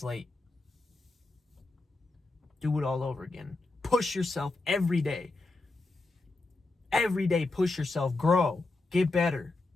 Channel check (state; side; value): quieter; right; 3.3 dB